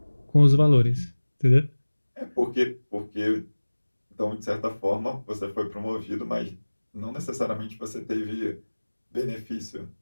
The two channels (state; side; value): inverted; both; correlation -1.00